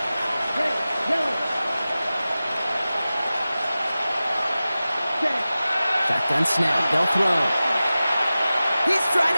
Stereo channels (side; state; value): both; inverted; correlation -0.96